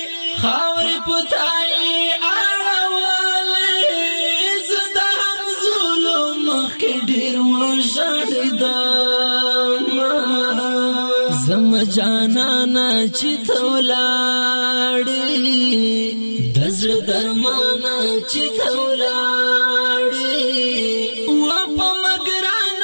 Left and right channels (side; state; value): both; inverted; correlation -1.00